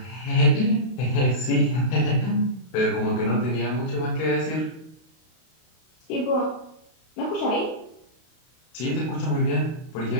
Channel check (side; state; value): right; late; 32 ms